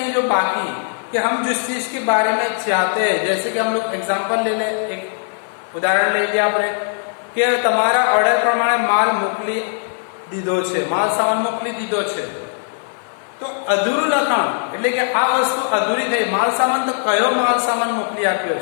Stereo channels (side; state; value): right; silent; 55 dB below the other